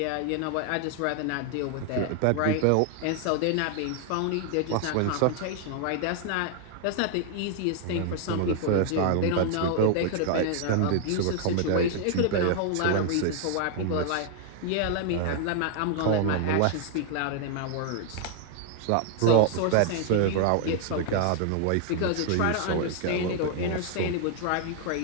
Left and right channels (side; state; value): both; different; correlation 0.00